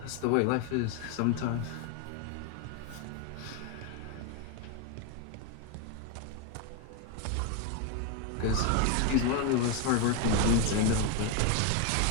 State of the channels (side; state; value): both; different; correlation 0.01